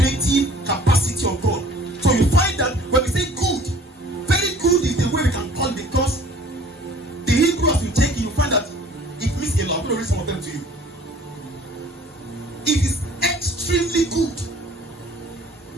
capacity of God. So you find that when we say good, very good is the way we can call it, because the Hebrew as you take it, you find that it means a lot. I'm going to read some of them to you. It is extremely good.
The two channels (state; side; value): normal; both; correlation 0.51